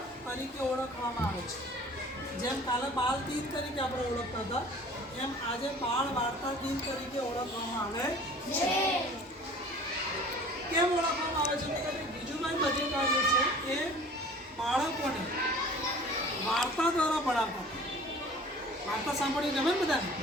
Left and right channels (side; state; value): both; normal; correlation 0.46